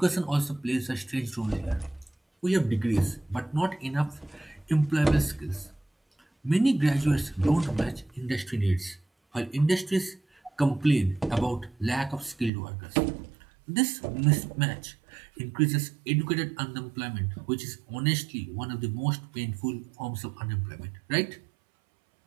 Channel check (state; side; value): drops out; left; at 12.5 s